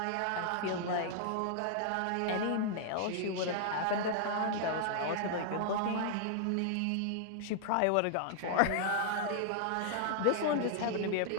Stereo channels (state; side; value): different; both; correlation 0.00